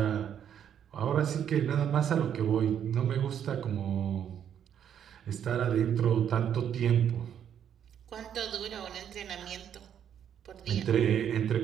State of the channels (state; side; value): quieter; left; 9.1 dB